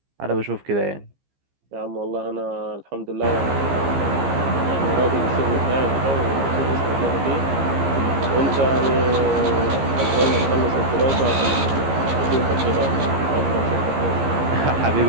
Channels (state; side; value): late; left; 15 ms